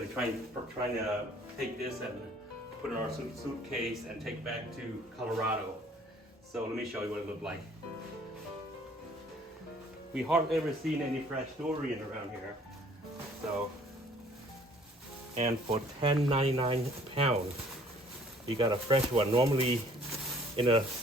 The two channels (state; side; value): normal; both; correlation 0.57